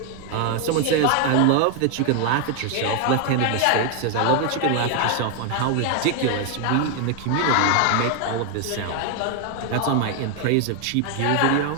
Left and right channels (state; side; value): different; both; correlation 0.01